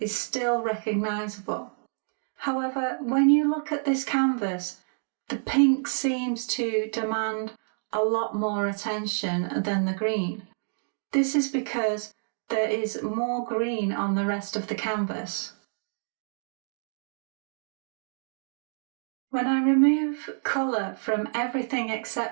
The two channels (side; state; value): left; silent; digital silence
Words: still recognisable. However, when you look at this canvas, the pink seems to demand a lot more attention than the green. This is because there is more green on the rest of the canvas. When I remove colour from everything